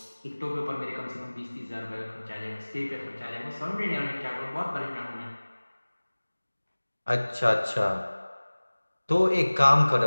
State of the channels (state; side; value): inverted; both; correlation -1.00